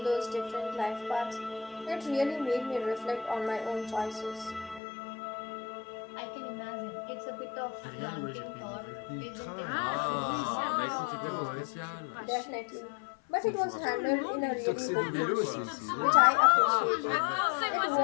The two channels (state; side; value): drops out; right; at 4.8 s